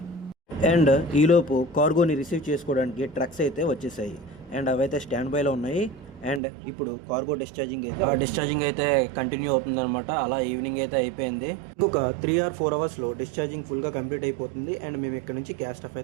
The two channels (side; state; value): left; drops out; at 6.4 s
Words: అండ్ ఈలోపు కార్గోని రిసీవ్ చేసుకోవడానికి ట్రక్స్ అయితే వచ్చేసాయి. అండ్ అవైతే స్టాండ్ బైలో ఉన్నాయి. అండ్ ఇప్పుడు కార్గో డిశ్చార్జింగ్ అయితే కంటిన్యూ అవుతుందన్నమాట. అలా ఈవినింగ్ అయితే అయిపోయింది. ఇంకొక 3 or 4 అవర్స్లో డిశ్చార్జింగ్ ఫుల్గా కంప్లీట్ అయిపోతుంది. అండ్ మేము ఇక్కడ నుంచి క్యాస్ట్ ఆఫ్